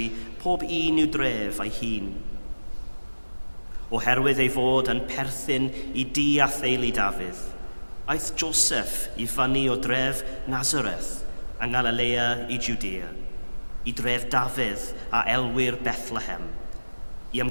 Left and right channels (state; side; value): inverted; both; correlation -1.00